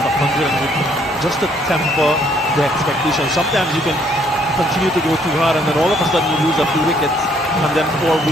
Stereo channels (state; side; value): normal; both; correlation 0.66